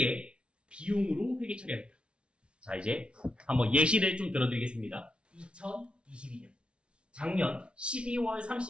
비용으로 회계 처리합니다. 자, 이제 한번 예시를 좀 들어드리겠습니다. 2022년 작년 12월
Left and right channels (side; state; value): left; late; 0.058 ms